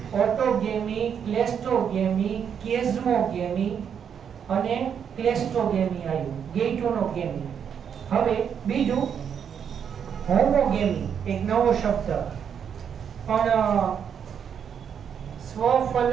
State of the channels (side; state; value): left; quieter; 7.8 dB